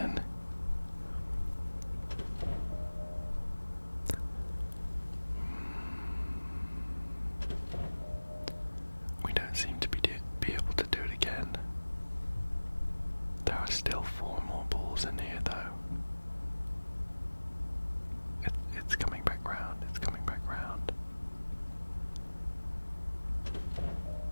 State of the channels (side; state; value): both; inverted; correlation -1.00